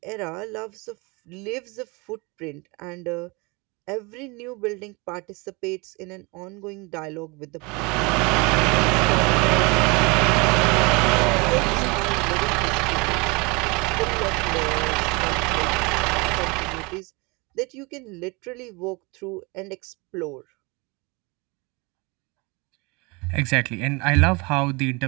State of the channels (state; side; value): quieter; left; 27.4 dB